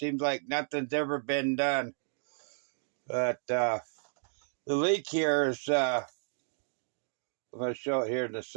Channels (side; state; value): left; silent; digital silence